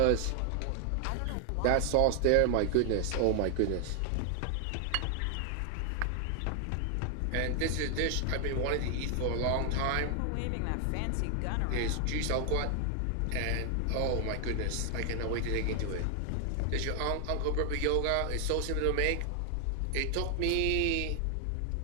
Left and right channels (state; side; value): different; both; correlation 0.00